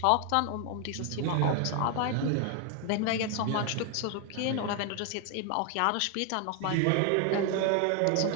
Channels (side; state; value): both; different; correlation 0.01